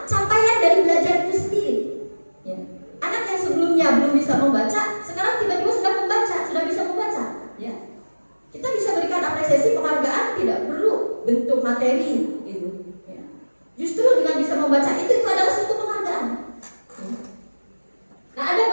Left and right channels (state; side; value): inverted; both; correlation -1.00